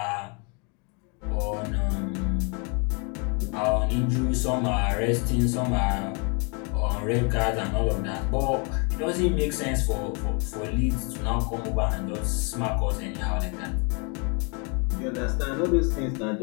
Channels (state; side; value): quieter; right; 34.4 dB